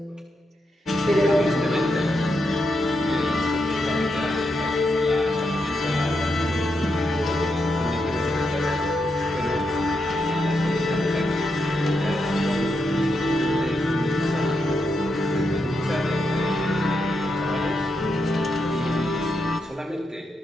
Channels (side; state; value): both; normal; correlation 0.83